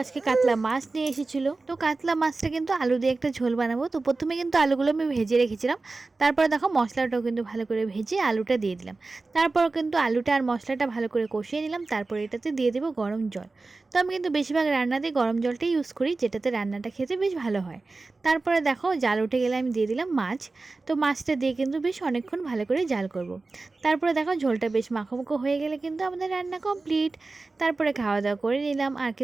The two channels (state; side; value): quieter; left; 3.6 dB